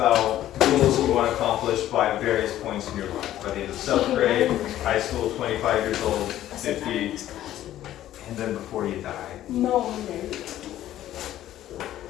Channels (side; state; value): right; quieter; 13.0 dB